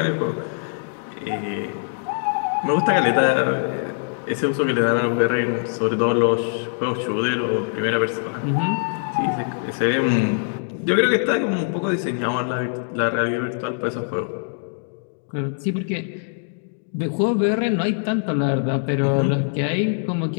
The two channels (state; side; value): silent; right; digital silence